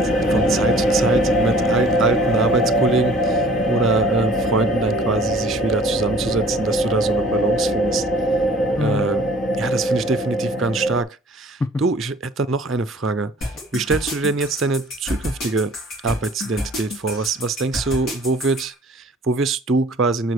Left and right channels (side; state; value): both; normal; correlation 0.52